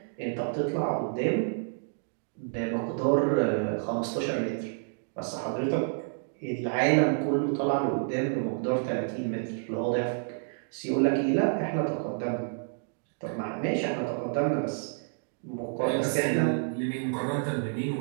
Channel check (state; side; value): silent; left; digital silence